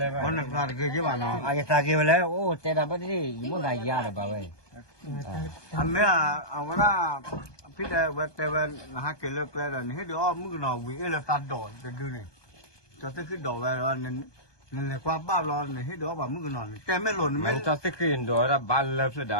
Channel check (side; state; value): right; late; 1.2 ms